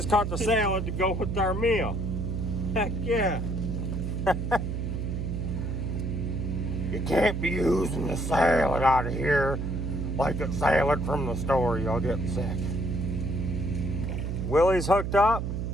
caught the salad to go with our meal. Heck yeah. You can't be using the salad out of here like it's salad from the store. You'll get sick. Willie's hooked up.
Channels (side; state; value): right; noise; hum, 2 dB below the sound